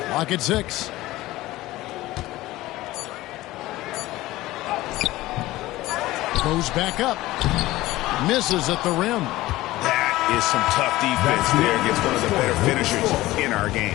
Clock at 6. Goes back up. Misses at the rim. That is some tough defense there against one of the better finishers in our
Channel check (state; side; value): quieter; right; 17.5 dB